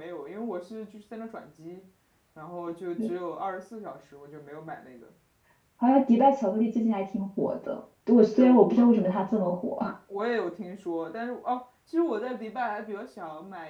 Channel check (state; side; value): identical; both; correlation 1.00